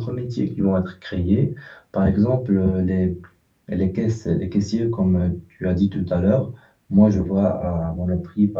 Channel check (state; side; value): identical; both; correlation 1.00